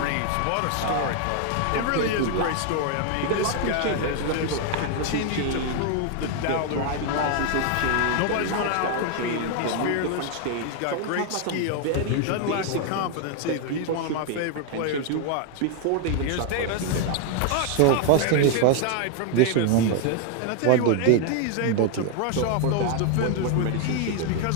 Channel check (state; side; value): different; both; correlation 0.00